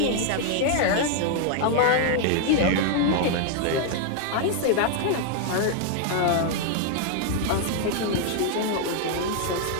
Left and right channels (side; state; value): both; different; correlation 0.00